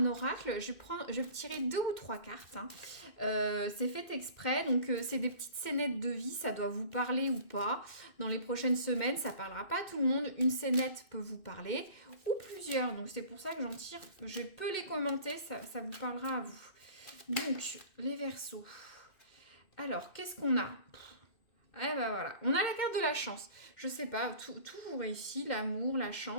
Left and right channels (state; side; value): late; right; 2.6 ms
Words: oracle. Je vais tirer 2 ou 3 cartes. Hein. C'est fait exprès, donc c'est des petites scénettes de vie. Ça doit vous parler ou pas. Dans les prochaines semaines, ça parlera pas à tout le monde. Une scénette peut vous parler ou plusieurs. Donc c'est pour ça que j'en tire. Je peux les commenter, ça vous parlera à vous. Donc les Verseaux. Alors qu'est-ce qu'on a ? Eh ben voilà, on a la carte de la chance. Je sais pas, tout vous réussit, l'amour, la